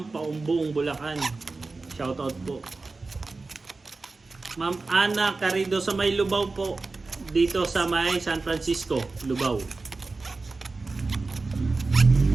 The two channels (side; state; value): left; quieter; 3.7 dB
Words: Paumbong, Bulacan. Shoutout po. Ma'am Ana Carido sa may Lubao po. Dito sa may San Francisco, Lubao.